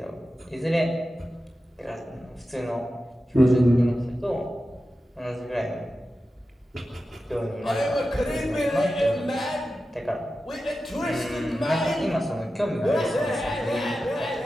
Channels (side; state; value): both; normal; correlation 0.93